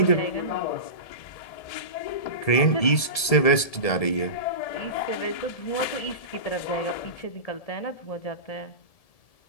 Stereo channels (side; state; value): right; late; 1.7 ms